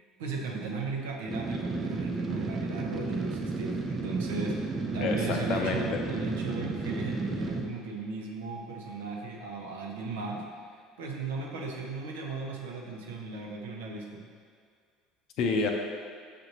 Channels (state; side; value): normal; both; correlation 0.51